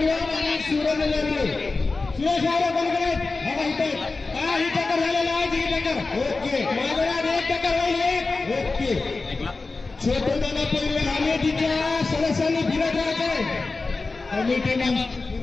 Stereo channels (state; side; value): quieter; right; 3.8 dB